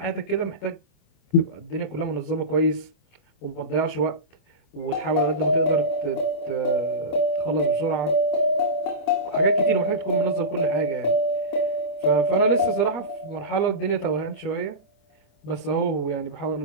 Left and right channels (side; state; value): right; late; 27 ms